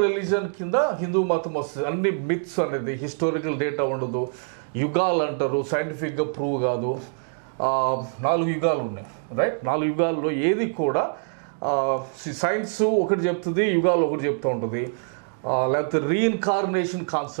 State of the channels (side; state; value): left; silent; digital silence